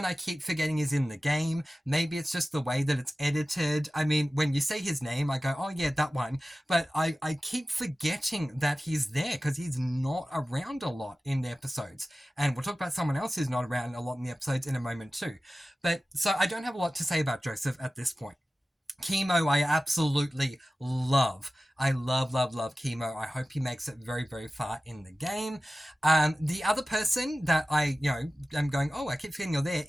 I keep forgetting is in the game. Maybe it's just the way that it's edited. I mean, when you say his name, I go, oh yeah, that one. But I keep forgetting that he's there because he's not around a lot in the episodes. And we'll talk about someone else who's not around a lot in the episodes in a moment too. But so I don't have a lot to say about Joseph at this point. Chemo, I absolutely love. I love Chemo. I hope he makes it very, very far in the game. The other person that I, am going, oh, I keep forgetting you're there,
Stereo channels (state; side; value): normal; both; correlation 0.96